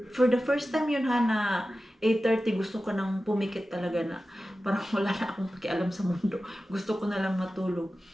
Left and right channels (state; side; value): normal; both; correlation 0.94